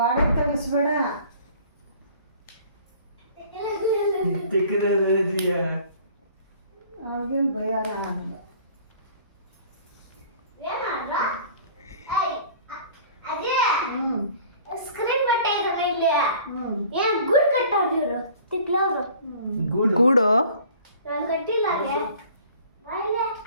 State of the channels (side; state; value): both; inverted; correlation -0.49